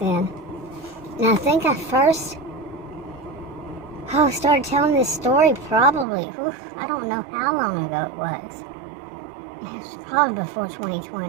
And I think I first started telling this story probably, I don't know how long ago it was. It was probably before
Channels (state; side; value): drops out; left; at 6.1 s